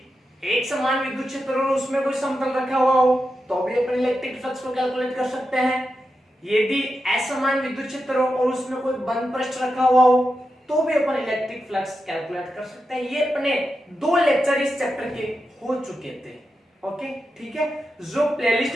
एक समान विद्युत क्षेत्र और उसमें कोई समतल रखा हुआ हो तो भी अपन इलेक्ट्रिक फ्लक्स को कैलकुलेट कर सकते हैं। यदि असमान विद्युत क्षेत्र हो और उसमें कोई बंद पृष्ठ रखा हुआ हो तो भी अपन इलेक्ट्रिक फ्लक्स कैलकुलेट कर सकते हैं। ये अपने दो लेक्चर इस चैप्टर के हो चुके थे। ओके, ठीक है। जो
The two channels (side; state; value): both; normal; correlation 0.89